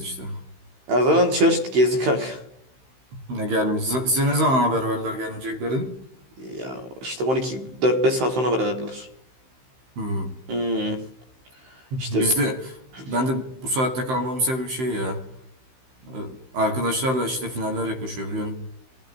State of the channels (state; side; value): late; left; 15 ms